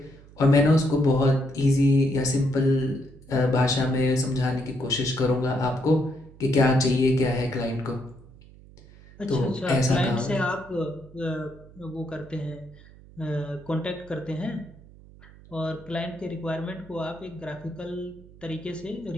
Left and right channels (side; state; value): right; noise; hum, 22 dB below the sound